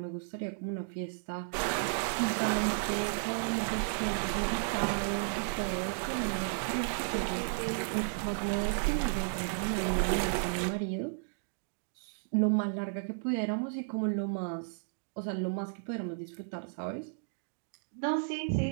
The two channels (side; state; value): left; silent; digital silence